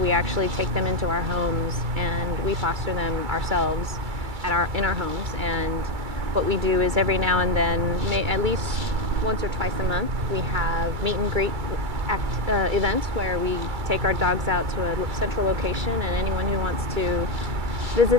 actually take them into our homes and we foster them ourselves in our homes. And what we do is every now and then, at least once or twice a month, we have meet and greet events where we take our dogs out to a central location, and anyone who wants to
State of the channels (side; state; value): left; late; 2.3 ms